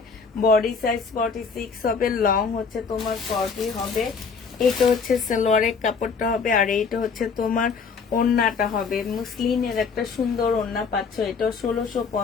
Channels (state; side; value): quieter; right; 5.4 dB